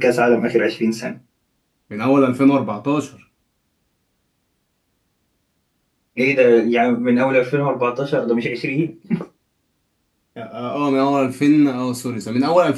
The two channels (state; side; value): identical; both; correlation 1.00